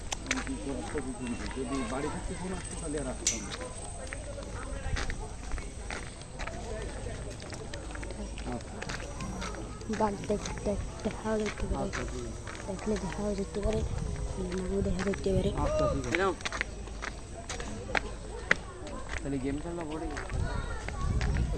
যদি বাড়ি থাকতে ফোন আসতো তাহলে আর আসতাম না। বাঘ দেখাও যেতে পারে, দেখলে দেখাও যেতে পারে, নাও দেখা যেতে পারে।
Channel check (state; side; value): identical; both; correlation 1.00